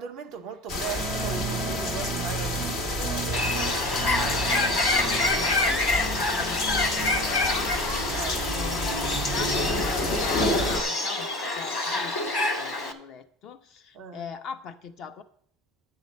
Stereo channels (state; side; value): normal; both; correlation 0.36